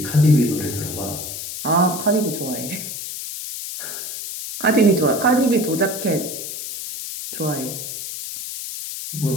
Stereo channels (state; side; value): noise; left; hiss, 7 dB below the sound